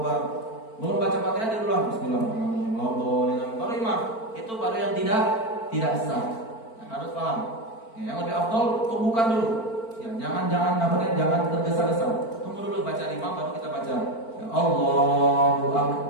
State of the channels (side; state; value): right; late; 4.4 ms